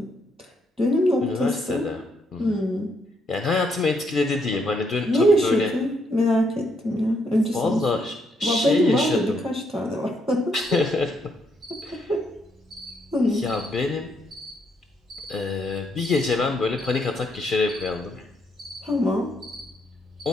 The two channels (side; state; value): both; normal; correlation 0.75